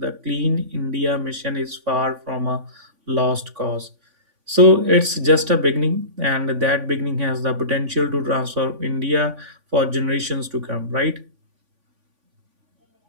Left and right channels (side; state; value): left; late; 3.5 ms